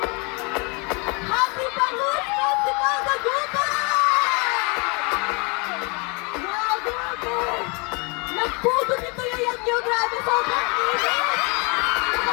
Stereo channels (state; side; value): quieter; right; 31.3 dB